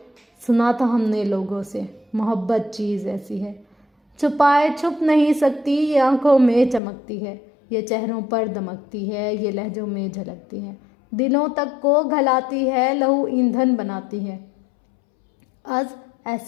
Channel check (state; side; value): drops out; right; at 6.8 s